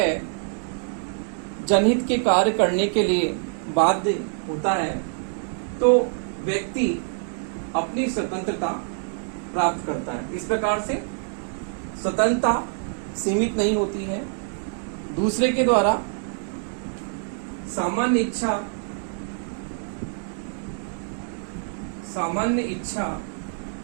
जनहित के कार्य करने के लिए बाध्य होता है, तो व्यक्ति अपनी स्वतंत्रता प्राप्त करता है। इस प्रकार से स्वतंत्रता सीमित नहीं होती है। दूसरे के द्वारा सामान्य इच्छा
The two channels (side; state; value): left; silent; 61 dB below the other